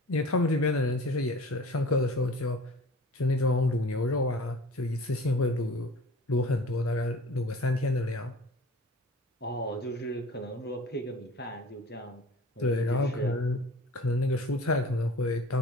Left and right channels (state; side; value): normal; both; correlation 0.43